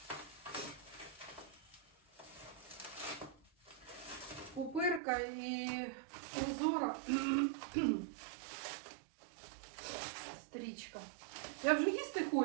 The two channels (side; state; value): left; drops out; at 5.0 s